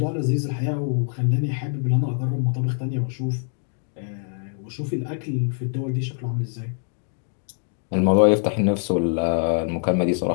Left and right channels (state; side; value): silent; right; 60 dB below the other